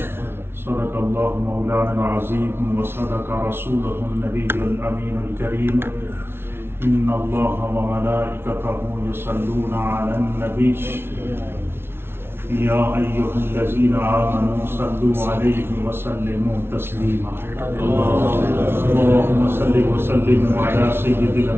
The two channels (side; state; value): left; late; 0.12 ms